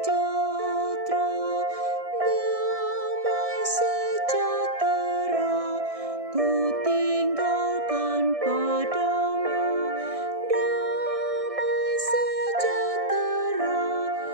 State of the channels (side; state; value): left; late; 1.6 ms